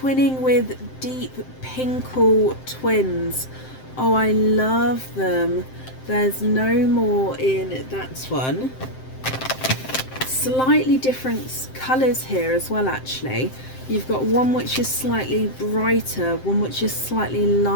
with Deep Pinkle twins. Oh, I love them. There's no more in that one. Slightly different colours here as well, actually. You've got one which is slightly brighter, one which is slightly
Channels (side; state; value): right; late; 7.7 ms